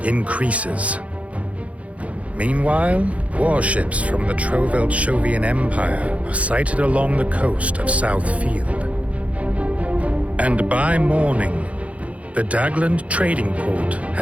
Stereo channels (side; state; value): left; late; 0.065 ms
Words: increases. Meanwhile, warships from the Trovelt-Shovian Empire are sighted along the coast of Southfield. And by morning, the Dagland trading port